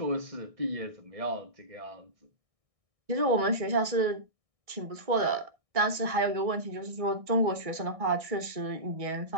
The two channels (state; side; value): late; left; 1.6 ms